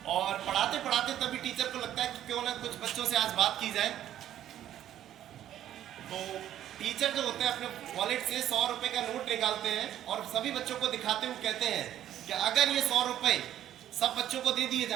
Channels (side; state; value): left; quieter; 11.6 dB